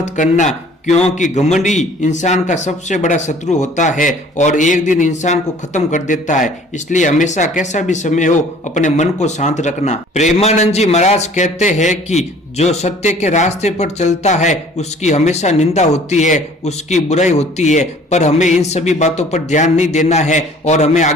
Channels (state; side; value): normal; both; correlation 0.52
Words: करना, क्योंकि घमंड ही इंसान का सबसे बड़ा शत्रु होता है और एक दिन इंसान को खत्म कर देता है। इसलिए हमेशा कैसा भी समय हो अपने मन को शांत रखना। प्रेमानंद जी महाराज कहते हैं कि जो सत्य के रास्ते पर चलता है उसकी हमेशा निंदा होती है, उसकी बुराई होती है, पर हमें इन सभी बातों पर ध्यान नहीं देना है और हमें